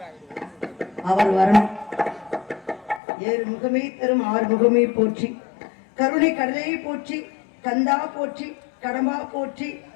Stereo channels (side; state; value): right; drops out; at 3.0 s